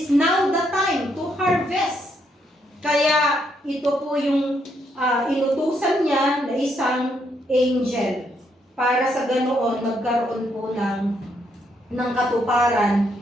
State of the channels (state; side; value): normal; both; correlation 0.75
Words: now the time to harvest. Kaya ito po yung inutusan niya na isang angel para sa ganoon magkaroon po ng katuparan